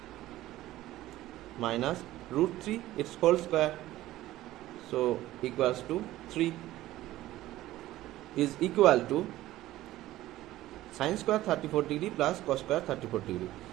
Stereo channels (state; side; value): quieter; left; 15.5 dB